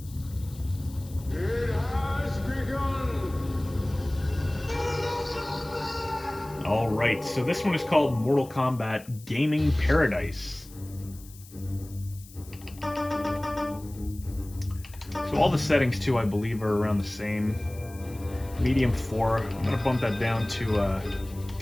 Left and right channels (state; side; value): noise; left; hiss, 21 dB below the sound